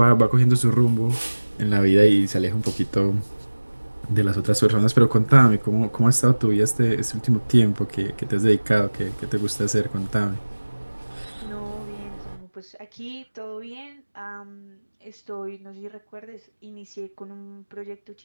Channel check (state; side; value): inverted; both; correlation -1.00